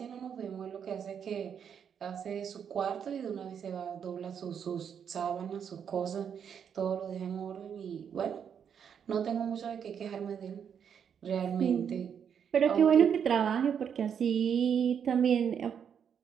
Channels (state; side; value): quieter; left; 7.8 dB